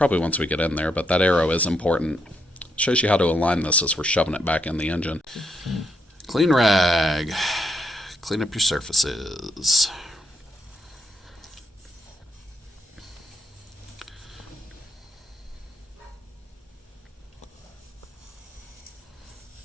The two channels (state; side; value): normal; both; correlation 0.78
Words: once we get in there, but that Aero is important. Shows you how to align this as we're shoving it back in the engine. Clean rag. Clean up your surfaces.